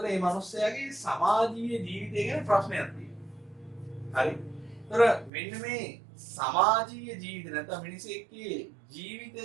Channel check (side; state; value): left; drops out; at 5.3 s